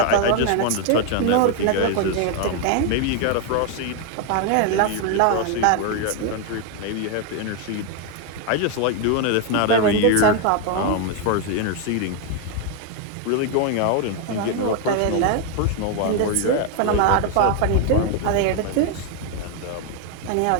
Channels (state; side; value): different; both; correlation 0.01